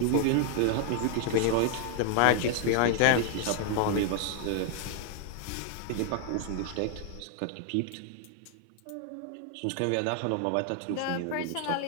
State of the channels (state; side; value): different; both; correlation 0.00